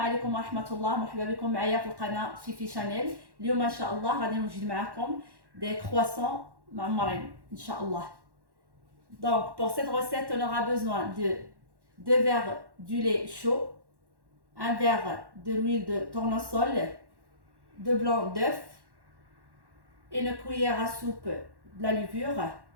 ورحمة الله، مرحبا بكم معايا في القناة Fifi Chanel. اليوم إن شاء الله غادي نوجد معكم des croissants معمرين إن شاء الله. Donc pour cette recette on aura besoin de 2 verres du lait chaud, 1 verre de l'huile de tournesol, 2 blancs d'œufs, une cuillère à soupe de la levure,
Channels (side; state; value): left; late; 1.1 ms